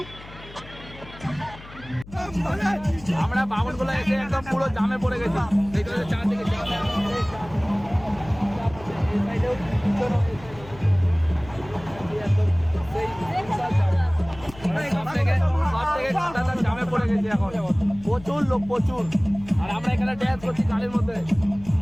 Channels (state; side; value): noise; left; hum, 18 dB below the sound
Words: আমরা বামনগুলো এসে একদম পুরো জামে পড়ে গেছি। দেখতে পাচ্ছি চারদিকে জাম। এই সাইডেও পিছনেও একদম সেই বিশাল জাম। সব থেকে কাঁটাতার জামে পড়ে গেছি এখন। প্রচুর লোক, প্রচুর। আর আমরা এখানে ড্যান্স করছি গাড়ির মধ্যে।